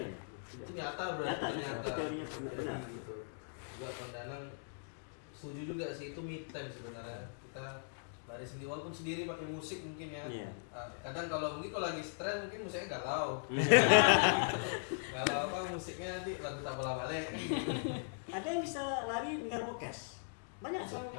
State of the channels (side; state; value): right; silent; digital silence